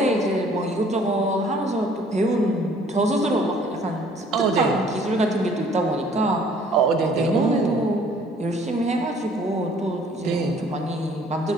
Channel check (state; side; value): normal; both; correlation 0.57